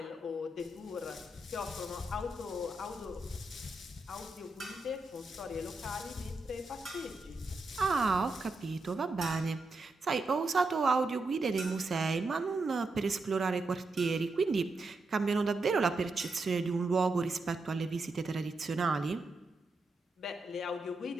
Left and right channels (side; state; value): left; quieter; 3.1 dB